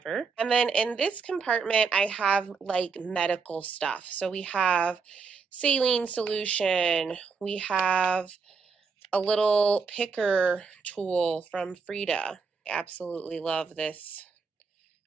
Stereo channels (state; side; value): quieter; left; 5.1 dB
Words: And then in this compartment, I have like medical stuff. So we have saline solution. We have a little picker tool from Frida. I absolutely love this